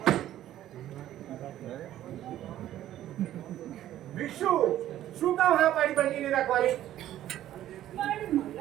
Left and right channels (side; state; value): left; quieter; 12.7 dB